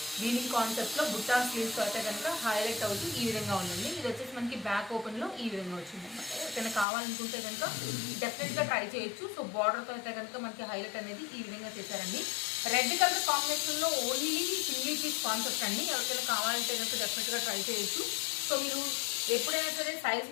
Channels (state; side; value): drops out; right; at 6.9 s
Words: వీవింగ్ కాన్సెప్ట్ లో బుట్టా స్లీవ్స్ అయితే కనుక హైలైట్ అవుతూ ఈ విధంగా ఉందండి. ఇది వచ్చేసి మనకి బ్యాక్ ఓపెన్ లో ఈ విధంగా వచ్చింది అనమాట. ఎవరికైనా కావాలనుకుంటే కనుక డెఫినెట్ గా ట్రై చేయొచ్చు. సో బార్డర్ తో అయితే కనుక మనకి హైలైట్ అనేది ఈ విధంగా చేశారండి. రెడ్ కలర్ కాంబినేషన్ లో ఓన్లీ సింగిల్ పీస్ కాన్సెప్ట్ అండి. ఎవరికైనా కావాలంటే కనుక డెఫినెట్ గా ట్రై చేయొచ్చు. సో మీరు ఎప్పుడైనా సరే సైజ్